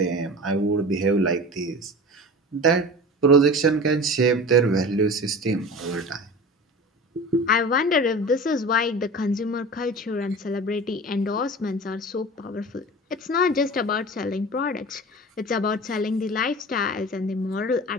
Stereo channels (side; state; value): both; normal; correlation 0.35